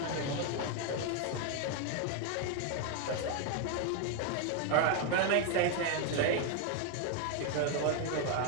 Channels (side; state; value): both; different; correlation 0.01